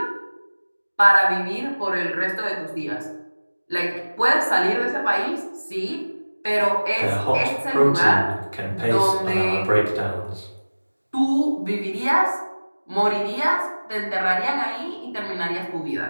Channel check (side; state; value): both; inverted; correlation -1.00